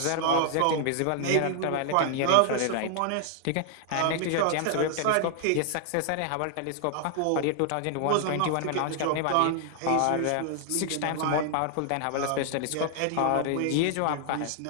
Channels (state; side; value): different; both; correlation 0.00